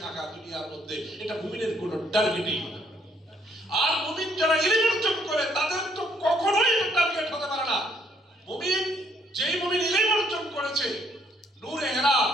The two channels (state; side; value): normal; both; correlation 0.68